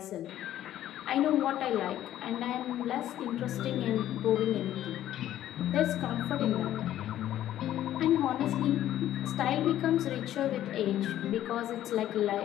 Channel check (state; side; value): quieter; right; 12.5 dB